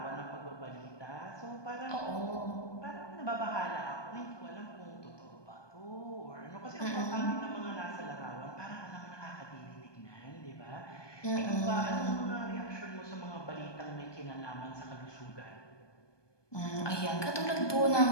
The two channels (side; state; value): right; late; 1.2 ms